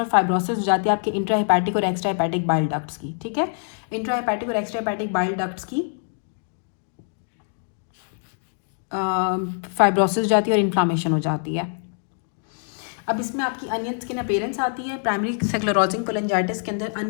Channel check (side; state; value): right; silent; 61 dB below the other